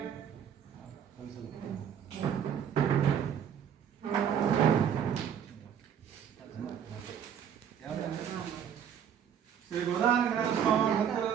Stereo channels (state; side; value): quieter; left; 8.5 dB